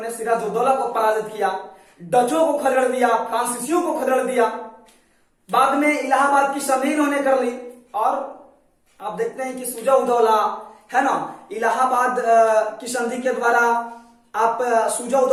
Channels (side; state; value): both; identical; correlation 1.00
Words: सिराजुद्दौला को पराजित किया, डचों को खदेड़ दिया, फ्रांसीसियों को खदेड़ दिया। बाद में इलाहाबाद की संधि इन्होंने कर ली और आप देखते हैं कि सुजा-उदौला, है ना, इलाहाबाद की संधि के द्वारा आप